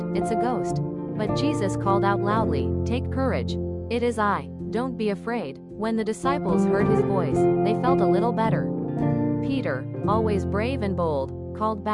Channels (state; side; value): identical; both; correlation 1.00